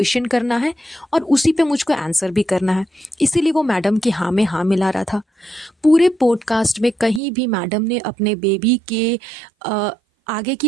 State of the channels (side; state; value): left; drops out; at 7.2 s